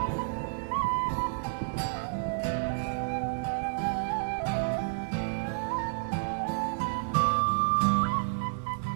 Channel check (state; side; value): silent; left; digital silence